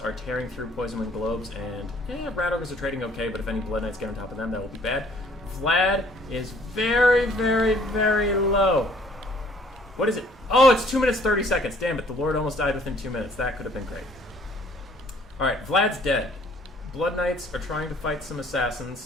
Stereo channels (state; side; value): normal; both; correlation 0.59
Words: tearing through Poison Wind Globes, and Rat Ogres are trading okay, but if any Blood Knights get on top of them, that will be bad. Vlad is very, very, very low. What is it? Oh, it's 2 minutes 30 seconds. Damn it, the Lord almost died within 2 minutes. That could have been great. Alright, Vlad's dead. Blood Knights are trying to fight some